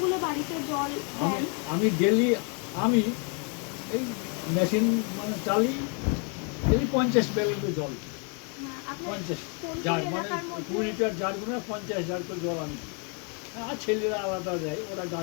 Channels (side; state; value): right; quieter; 37.8 dB